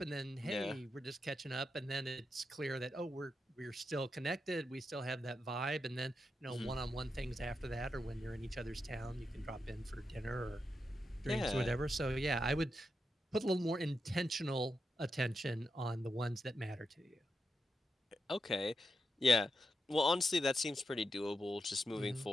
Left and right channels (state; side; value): normal; both; correlation 0.86